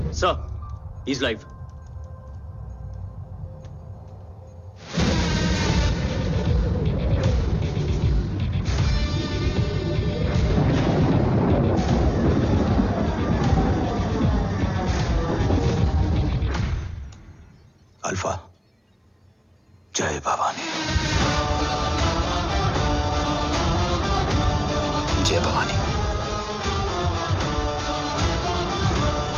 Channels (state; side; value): identical; both; correlation 1.00